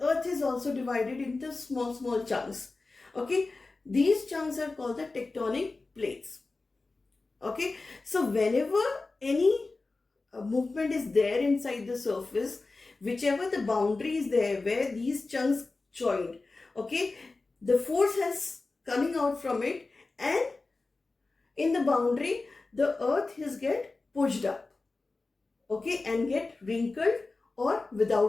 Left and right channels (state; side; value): quieter; right; 3.6 dB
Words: earth is also divided into small chunks. Okay, these chunks are called the tectonic plates. Okay, so whenever any movement is there inside the surface, whichever the boundary is there where these chunks joined, okay, the force has coming out from it, and in the boundary the earth is get pushed up, okay, and get wrinkled or